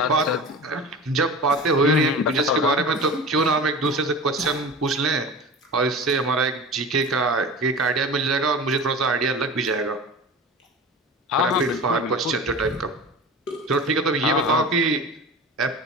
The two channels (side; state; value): both; normal; correlation 0.33